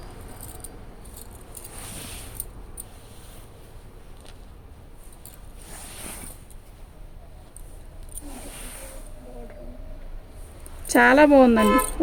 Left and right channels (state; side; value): identical; both; correlation 1.00